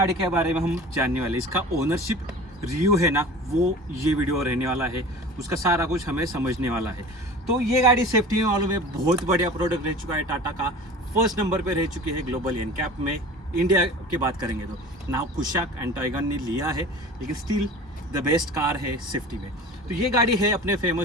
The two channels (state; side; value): normal; both; correlation 0.39